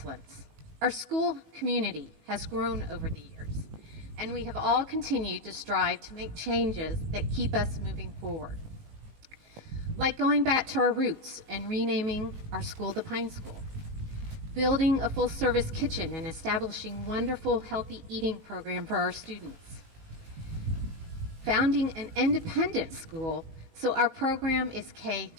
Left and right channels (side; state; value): left; late; 19 ms